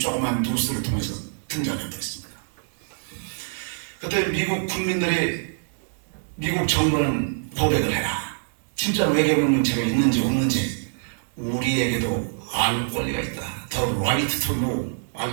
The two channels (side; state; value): left; silent; digital silence